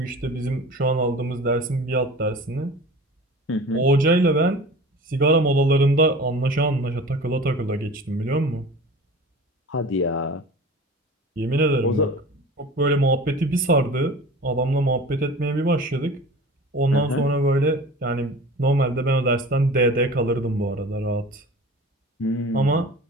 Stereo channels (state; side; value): normal; both; correlation 0.38